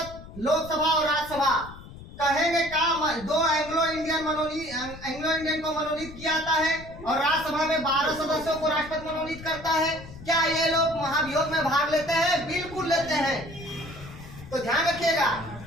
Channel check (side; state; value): left; noise; rumble, 15 dB below the sound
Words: लोकसभा और राज्यसभा कहेंगे का 2 एंग्लो इंडियन को मनोनीत किया जाता है और राज्यसभा में 12 सदस्यों को राष्ट्रपति मनोनीत करता है। क्या ये लोग महाभियोग में भाग लेते हैं? बिल्कुल लेते हैं। तो ध्यान रखिएगा,